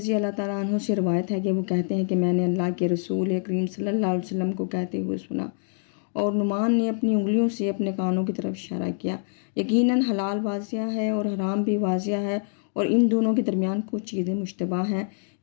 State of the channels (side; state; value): right; silent; 61 dB below the other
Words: اللہ تعالیٰ عنہ سے روایت ہے کہ وہ کہتے ہیں کہ میں نے اللہ کے رسول کریم صلی اللہ علیہ وسلم کو کہتے ہوئے سنا، اور نعمان نے اپنی انگلیوں سے اپنے کانوں کی طرف اشارہ کیا، یقیناً حلال واضح ہے اور حرام بھی واضح ہے، اور ان دونوں کے درمیان کچھ چیزیں مشتبہ ہیں